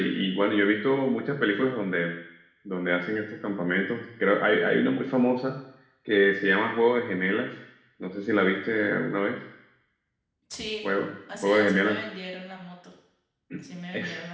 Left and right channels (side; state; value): both; identical; correlation 1.00